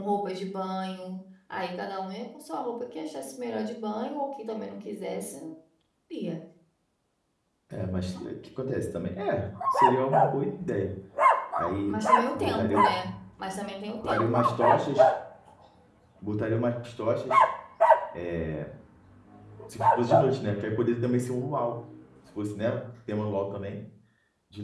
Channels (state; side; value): identical; both; correlation 1.00